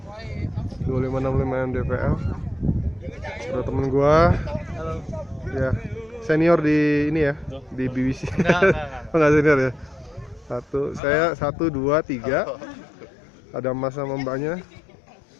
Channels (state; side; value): drops out; right; at 11.0 s